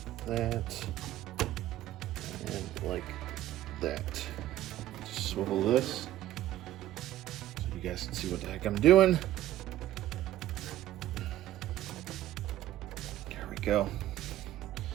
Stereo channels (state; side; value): quieter; left; 13.7 dB